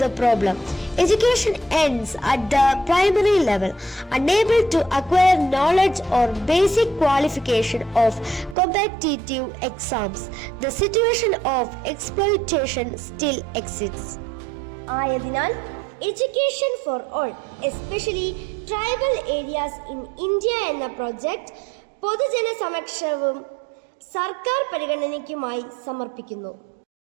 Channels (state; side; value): drops out; left; at 8.6 s